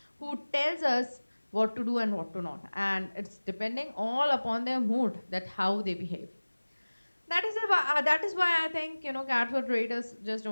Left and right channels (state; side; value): inverted; both; correlation -1.00